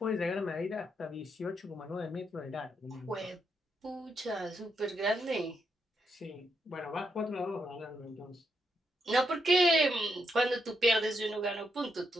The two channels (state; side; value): normal; both; correlation 0.81